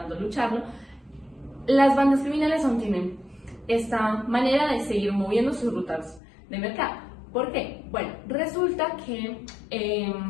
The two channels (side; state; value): right; drops out; at 6.2 s